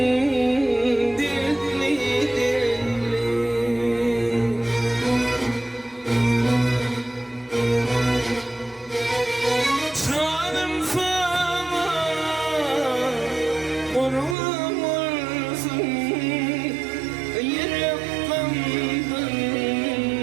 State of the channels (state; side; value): drops out; left; at 14.4 s